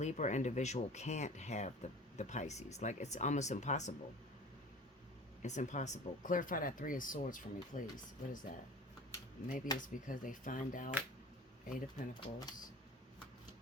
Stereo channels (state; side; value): normal; both; correlation 0.41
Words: individual can't have the Pisces. Like, it's almost impossible. It's impossible. Clarify that Three of Swords for me, please. What is that? Maybe it's because they find out. Eight of Pentacles.